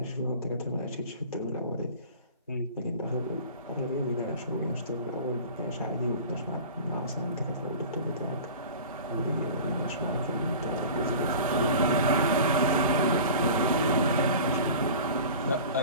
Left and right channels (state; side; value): inverted; both; correlation -0.39